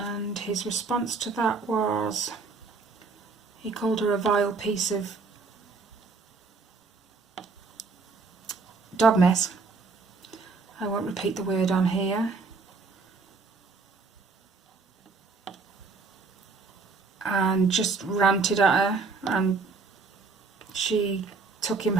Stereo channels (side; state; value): left; quieter; 4.4 dB